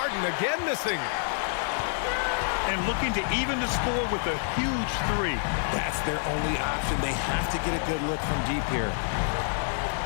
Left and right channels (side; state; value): right; silent; digital silence